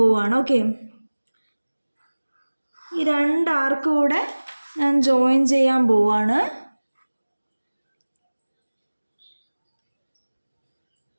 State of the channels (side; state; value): both; inverted; correlation -1.00